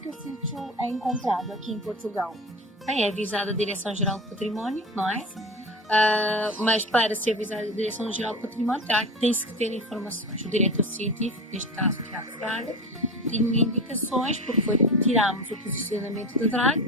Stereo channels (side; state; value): both; normal; correlation 0.28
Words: o sítio é encontrado aqui em Portugal? Bem, é avisada a Direção-Geral do Património, não é? Mas para ser avisada a Direção-Geral do Património tem-se que ter informações. O diretor científico, neste caso Tiago Fraga, tinha indicações, porque tirámos o posicionamento da